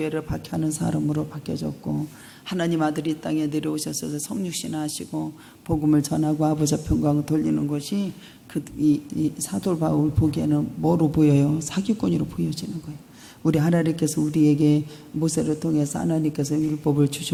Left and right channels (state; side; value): identical; both; correlation 1.00